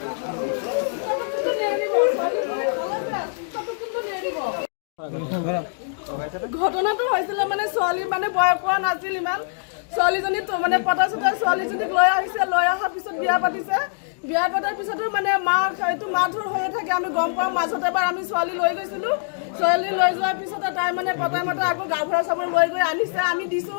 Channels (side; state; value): right; silent; digital silence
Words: ঘটনাটো হৈছিল মানে ছোৱালী মানে বয়স হোৱা নাছিল ইমান ছোৱালীজনী তো মানে পতা চতা ছোৱালীজনীক লৈ আহিছে লৈ অহাৰ পিছত বিয়া পাতিছে বিয়া পতাৰ পিছতো মানে এইটো মাৰধৰ হৈয়ে থাকে আমি গম পাওঁ মাজতে এবাৰ আমি ছোৱালী লৈ গৈছিলোঁ ছোৱালী লৈ যোৱাৰ পিছতে তাই মানে পতাই মতে আকৌ গাঁওবুঢ়া চাবৰ লৈ গৈ আনিছে আমি